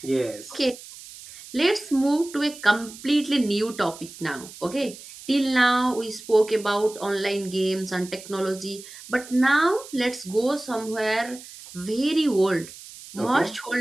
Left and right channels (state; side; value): noise; right; hiss, 16 dB below the sound